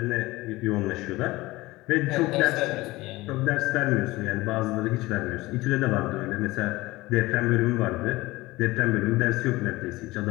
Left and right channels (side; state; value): right; quieter; 19.8 dB